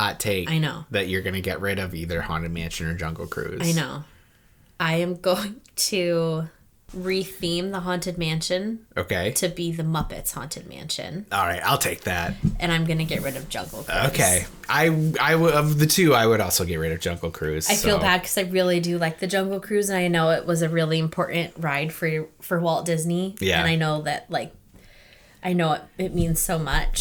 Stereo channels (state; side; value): identical; both; correlation 1.00